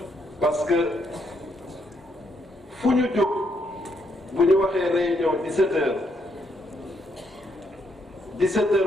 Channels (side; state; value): both; normal; correlation 0.75